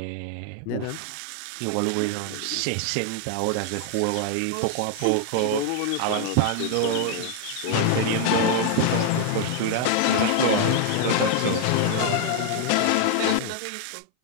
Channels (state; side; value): different; both; correlation 0.00